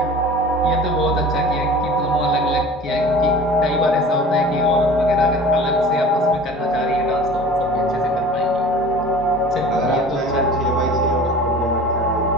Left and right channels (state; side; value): normal; both; correlation 0.41